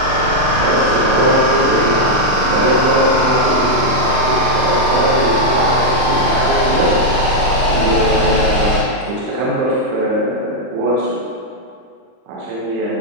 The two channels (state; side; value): late; left; 39 ms